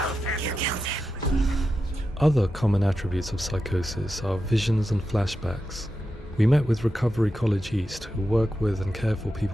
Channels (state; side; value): normal; both; correlation 0.89